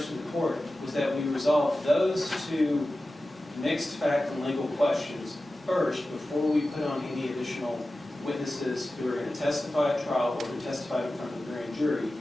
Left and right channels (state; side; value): normal; both; correlation 0.95